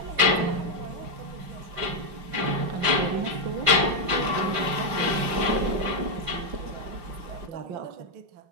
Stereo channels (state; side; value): late; left; 5.7 ms